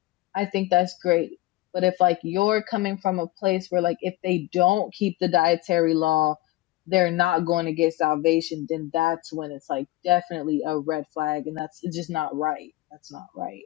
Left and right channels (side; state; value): right; quieter; 17.9 dB